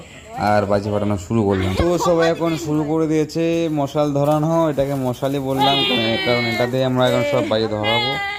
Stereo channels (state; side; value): identical; both; correlation 1.00